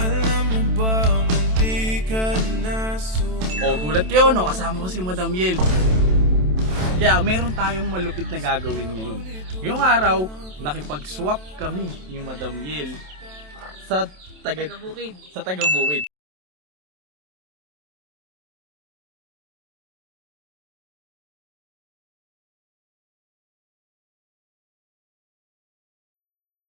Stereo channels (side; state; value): left; late; 27 ms